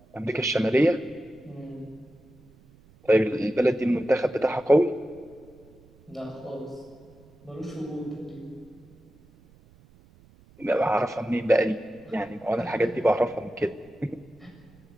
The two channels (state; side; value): noise; right; rumble, 27 dB below the sound